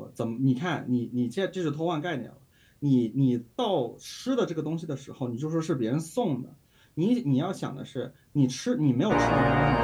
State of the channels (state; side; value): identical; both; correlation 1.00